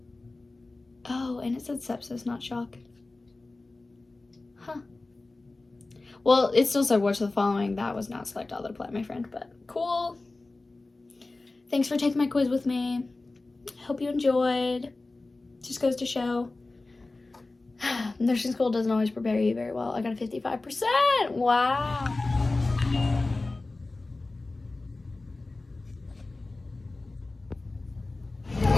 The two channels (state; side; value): quieter; right; 3.2 dB